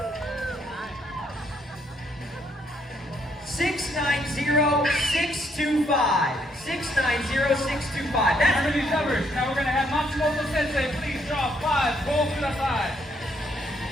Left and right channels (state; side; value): normal; both; correlation 0.71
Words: 6, 9, 0, 6, 2, 5. 6, 9, 0, 6, 2, 5. Remember these numbers. Now we're gonna have Matsumoto Sensei. Please draw 5. Pull to the side.